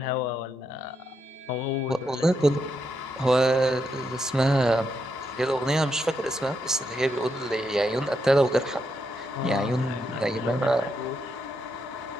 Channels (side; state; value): both; normal; correlation 0.81